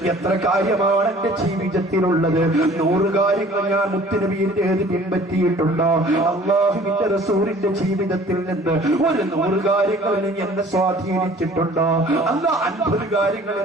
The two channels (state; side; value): normal; both; correlation 0.51